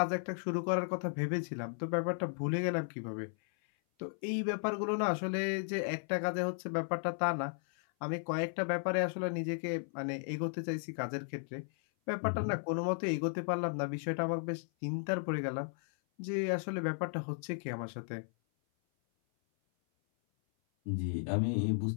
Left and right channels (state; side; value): silent; right; 54 dB below the other